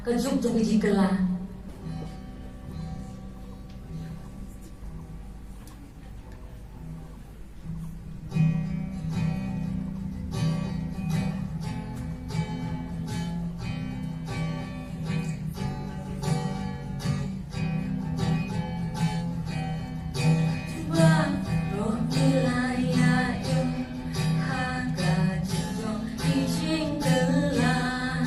cái giúp cho cái jingkylla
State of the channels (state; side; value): identical; both; correlation 1.00